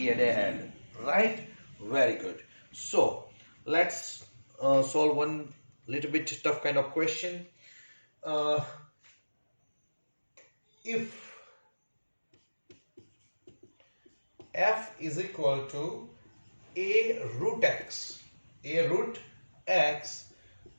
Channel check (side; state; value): both; inverted; correlation -1.00